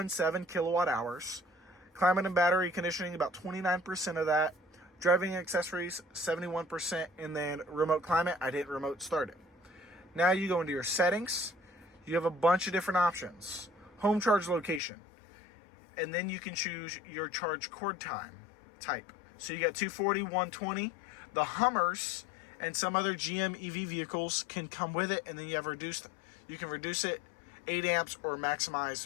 kilowatt hours. Climate and battery conditioning, about 29% of that. Driving accessories, 71%. And then remote climate, I didn't remote start it. Now you go into your settings. You have a bunch of different options. Home charge location. And then you can choose your charge cord time type. So you got 240, 120. The Hummers and some other GM EV vehicles can come with it, and then you can reduce it 8 amps or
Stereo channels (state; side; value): drops out; right; at 14.8 s